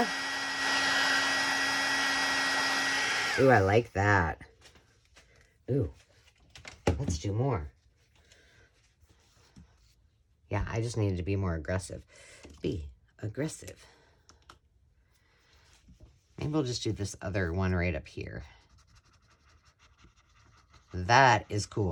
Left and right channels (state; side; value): identical; both; correlation 1.00